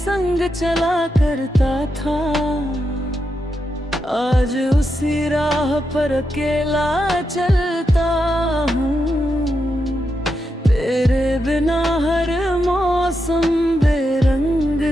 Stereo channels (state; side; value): normal; both; correlation 0.85